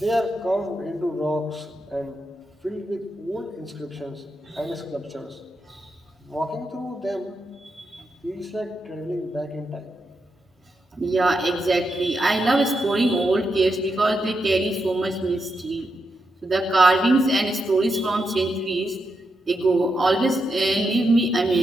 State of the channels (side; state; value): both; normal; correlation 0.85